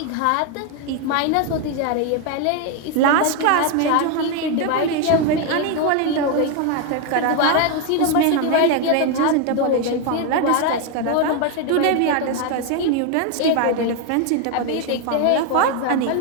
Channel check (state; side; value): different; both; correlation 0.01